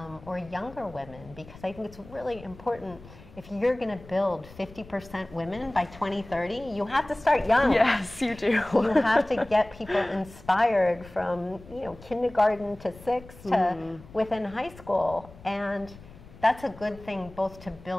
or younger women, because I think it's really important. If you're going to build 50% women by 2030, you have to start young. Yes, you do. You have to get people inspired from kindergarten to 6 to within high school, and that's a good thing both to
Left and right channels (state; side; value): noise; left; rumble, 20 dB below the sound